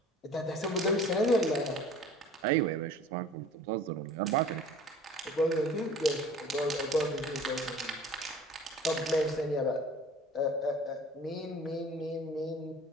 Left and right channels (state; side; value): normal; both; correlation 0.46